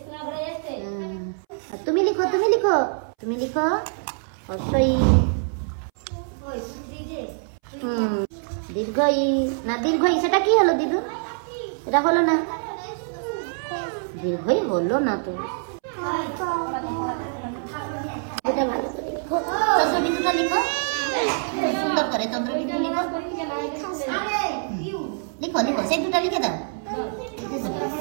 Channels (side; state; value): left; silent; 62 dB below the other